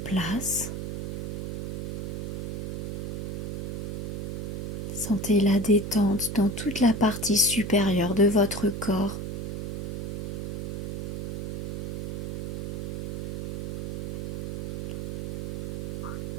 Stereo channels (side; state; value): right; noise; hum, 3 dB below the sound